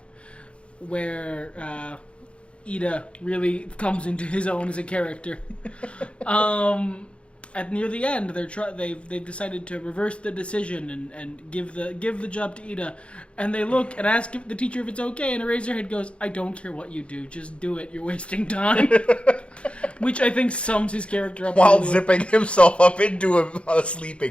where Ida really comes into his own as a character. At near the end, they've decided to reverse the decision and give the job to Ida, and they look and ask the teacher if it's okay, and Eraserhead goes, "I don't care what you do, just do it. You're wasting time." Which I think sums his character up while zipping himself up into a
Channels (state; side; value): late; right; 0.059 ms